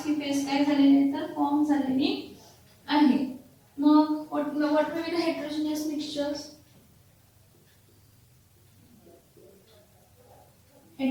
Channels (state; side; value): identical; both; correlation 1.00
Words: ही फेज काय झालेली आहे? तर फॉर्म झालेली आहे. मग what may be the heterogeneous mixtures?